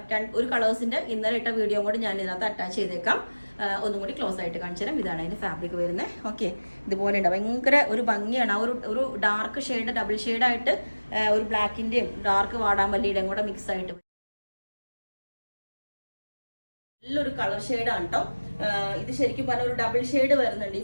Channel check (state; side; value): inverted; both; correlation -1.00